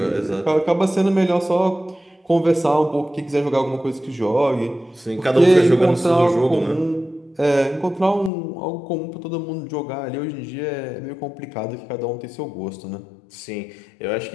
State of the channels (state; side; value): drops out; right; at 8.3 s